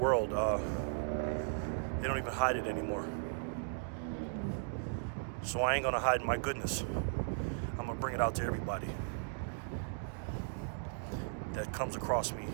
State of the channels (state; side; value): silent; left; digital silence